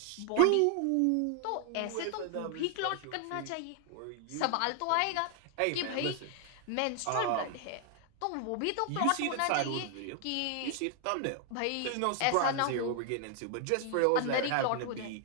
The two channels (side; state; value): both; different; correlation 0.00